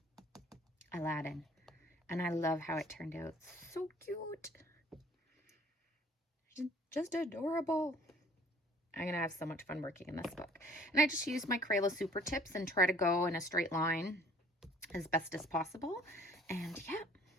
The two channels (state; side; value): normal; both; correlation 0.56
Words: Aladdin, and I love how it turned out. So cute, just adorable. I'm gonna have so much fun working in this book, and I just use my Crayola Super Tips and try to go in a straight line as best as possible. And yeah,